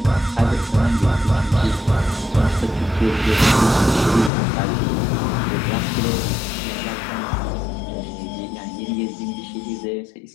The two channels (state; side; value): drops out; right; at 4.3 s